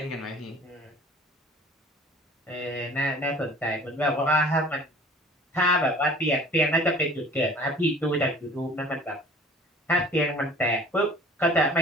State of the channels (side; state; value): both; normal; correlation 0.48